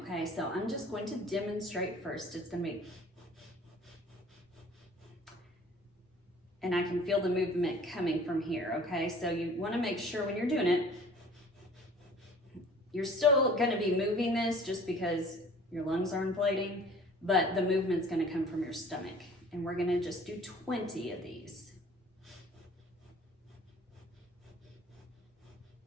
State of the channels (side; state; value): both; normal; correlation 0.49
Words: So I'm just going to demonstrate first. It's gonna be, and I can feel the movement coming from here, okay? So you wanna make sure when you're doing it, you're still gonna be moving this just because your lungs are inflating, but the movement's gonna come from your stomach. And we're gonna just do 20 of these.